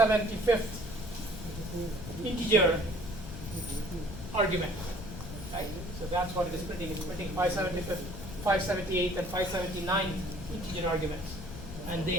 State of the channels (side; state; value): left; noise; rumble, 10 dB below the sound